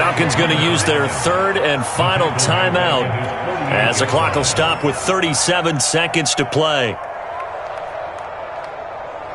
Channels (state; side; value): identical; both; correlation 1.00